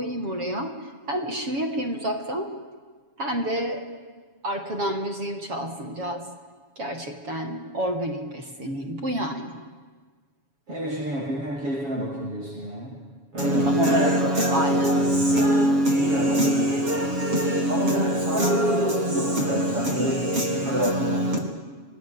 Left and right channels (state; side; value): late; left; 7.2 ms